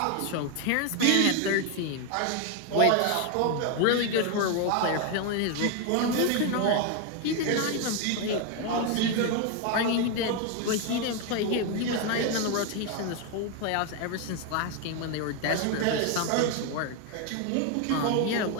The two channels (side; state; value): both; different; correlation 0.01